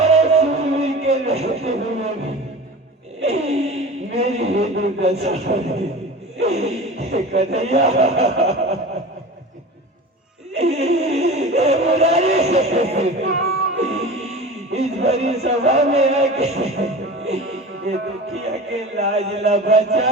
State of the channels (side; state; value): both; normal; correlation 0.34